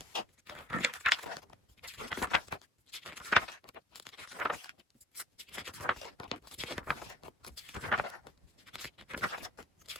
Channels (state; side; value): normal; both; correlation 0.50